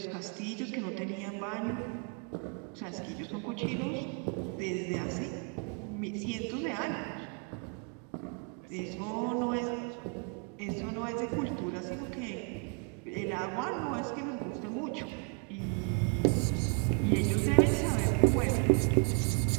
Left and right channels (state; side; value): quieter; left; 39.4 dB